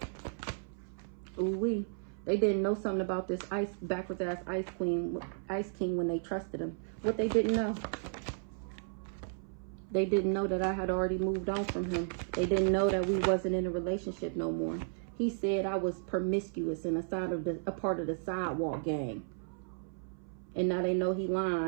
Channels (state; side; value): silent; left; 55 dB below the other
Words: Ooh-wee. They didn't know something about this backwards ass ice king when they trusted him. What they didn't know. They didn't know that I had already moved on from him. They didn't know that we wasn't in a relationship no more. He said I was promiscuous and a part of the sidewalk gang. And now they know he